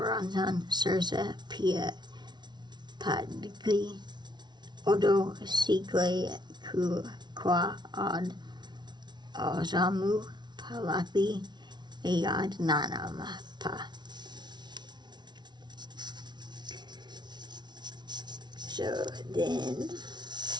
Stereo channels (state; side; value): late; left; 0.20 ms